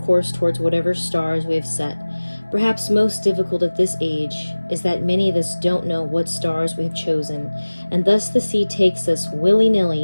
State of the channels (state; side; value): inverted; both; correlation -1.00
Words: towards whatever stars we have set. Perhaps most difficult at this age is that many of us don't know what stars we have chosen, and thus the sea takes us